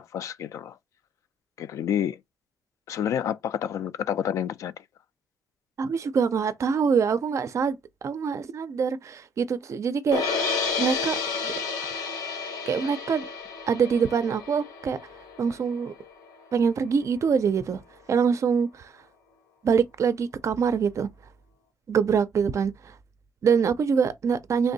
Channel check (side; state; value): left; quieter; 3.8 dB